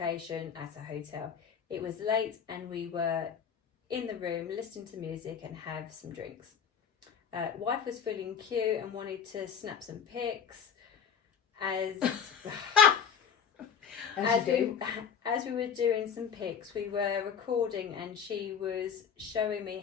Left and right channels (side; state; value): right; quieter; 7.3 dB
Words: at a hotel. It was late and we were in the room listening to music and have some drinks. Wife was feeling cute and wanted to snap some pics. As we were doing some pics, we were recording and she was showing